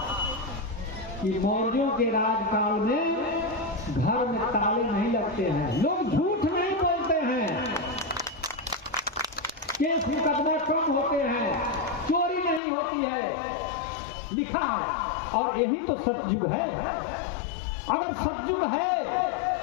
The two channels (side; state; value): right; drops out; at 12.6 s